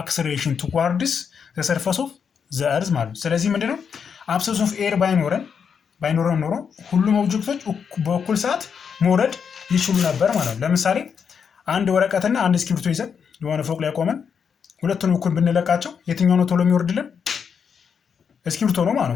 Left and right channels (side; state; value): right; quieter; 6.8 dB